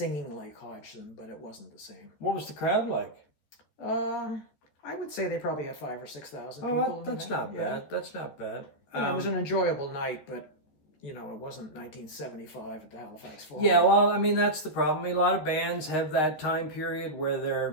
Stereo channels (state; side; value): late; right; 13 ms